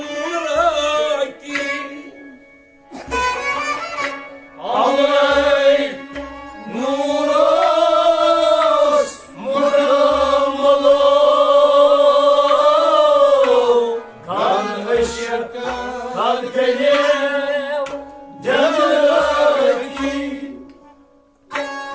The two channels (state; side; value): identical; both; correlation 1.00